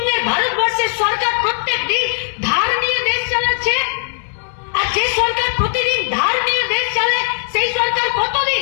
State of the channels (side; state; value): right; silent; digital silence